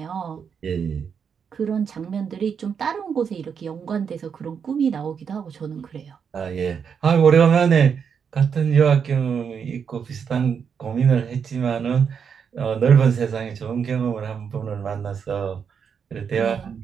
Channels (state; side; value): quieter; left; 6.9 dB